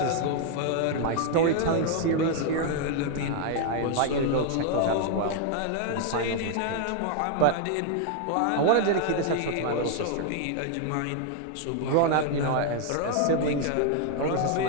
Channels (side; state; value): both; different; correlation 0.00